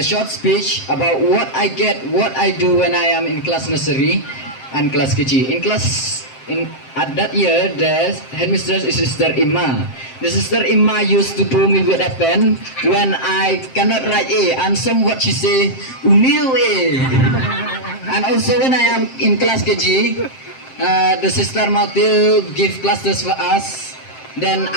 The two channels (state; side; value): late; right; 7.6 ms